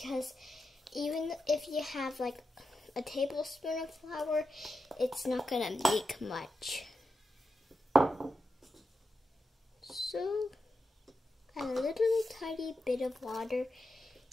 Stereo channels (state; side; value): normal; both; correlation 0.88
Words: even if you have like a tablespoon of flour, it's not going to make much. So, add a little tiny bit of water